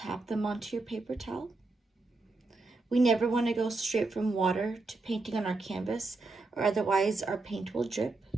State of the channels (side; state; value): left; quieter; 3.4 dB